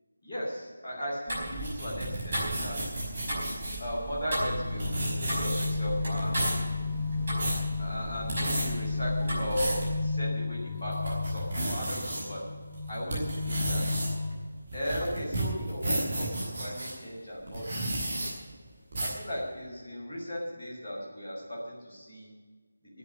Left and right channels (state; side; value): inverted; both; correlation -0.87